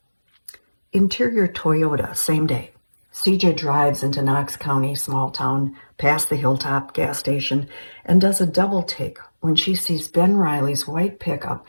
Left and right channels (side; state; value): both; inverted; correlation -1.00